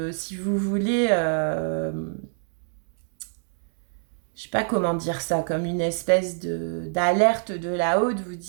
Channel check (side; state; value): left; silent; digital silence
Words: si vous voulez, je sais pas comment dire ça, comme une espèce d'alerte de là-haut, de vous